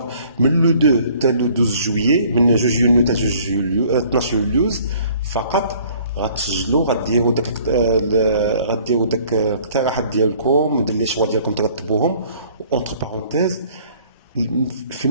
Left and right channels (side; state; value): both; inverted; correlation -0.56